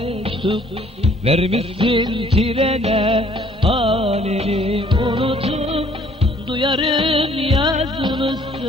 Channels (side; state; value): both; normal; correlation 0.59